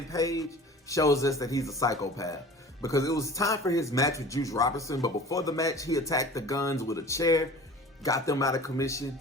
Page shows us that he's a psychopath. Because it was time for his match with Juice Robinson. But before the match, he attacked the Guns with a chair. Got them out of commission.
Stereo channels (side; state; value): both; normal; correlation 0.42